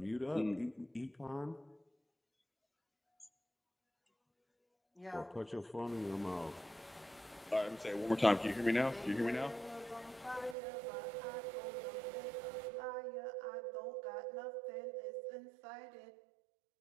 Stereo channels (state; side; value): drops out; left; at 10.6 s